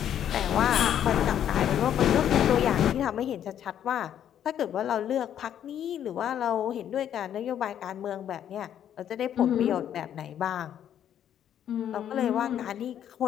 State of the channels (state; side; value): quieter; right; 10.0 dB